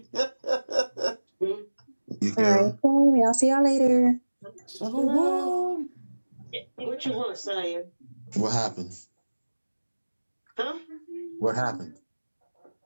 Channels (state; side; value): inverted; both; correlation -1.00